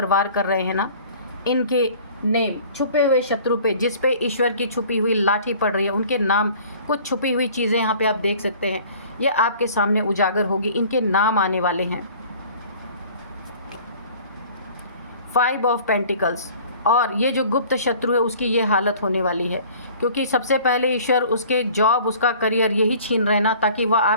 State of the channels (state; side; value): inverted; both; correlation -0.49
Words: वार कर रहे हैं ना, इनके नेम, छुपे हुए शत्रु पे, जिस पे ईश्वर की छुपी हुई लाठी पड़ रही है, उनके नाम, कुछ छुपी हुई चीज़ें यहाँ पे आप देख सकते हैं, ये आपके सामने उजागर होगी, इनके नाम आने वाले हैं। 5 ऑफ पेंटिकल्स, और ये जो गुप्त शत्रु है उसकी ये हालत होने वाली है, क्योंकि सबसे पहले ईश्वर उसके जॉब, उसका करियर यही छीन रहे ना, ताकि वह